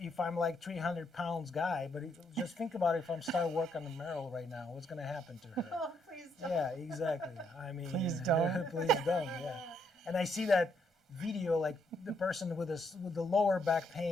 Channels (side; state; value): both; normal; correlation 0.74